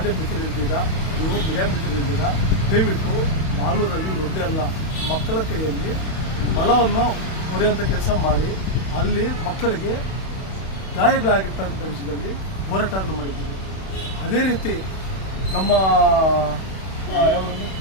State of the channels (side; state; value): right; late; 31 ms